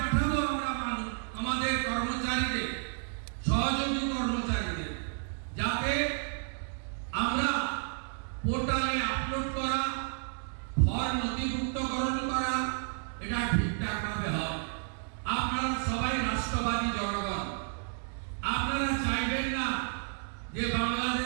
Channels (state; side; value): silent; left; 57 dB below the other